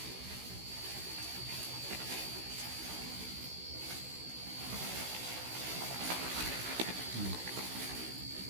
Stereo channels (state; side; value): late; left; 16 ms